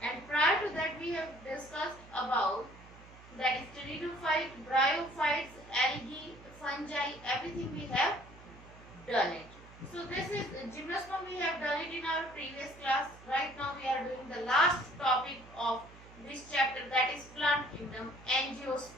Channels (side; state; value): right; noise; hum, 20 dB below the sound